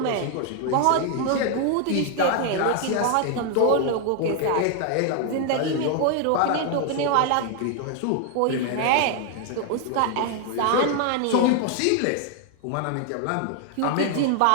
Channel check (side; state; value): both; different; correlation 0.00